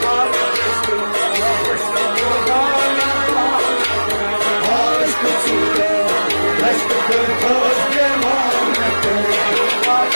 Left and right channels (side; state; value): both; inverted; correlation -1.00